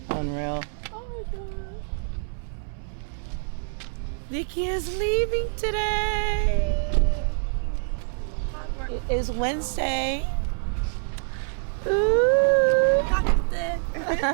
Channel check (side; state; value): left; silent; 61 dB below the other